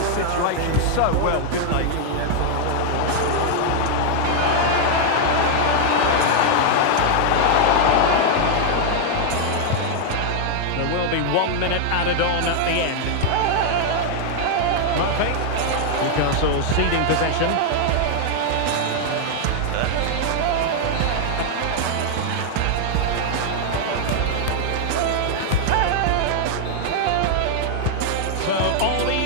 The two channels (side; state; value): both; different; correlation 0.00